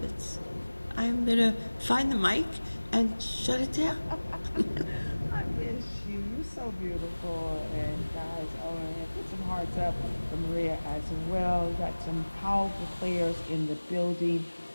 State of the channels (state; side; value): inverted; both; correlation -1.00